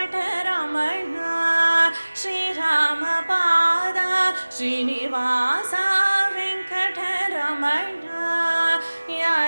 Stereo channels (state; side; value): inverted; both; correlation -1.00